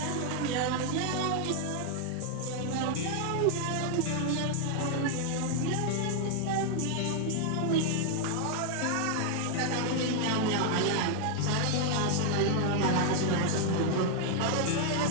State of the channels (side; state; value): both; different; correlation 0.00